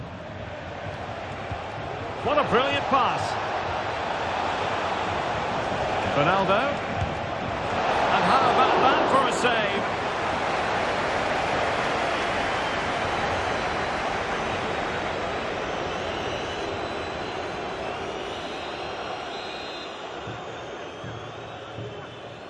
What a brilliant pass. Ronaldo. And how about that for a save?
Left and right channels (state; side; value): identical; both; correlation 1.00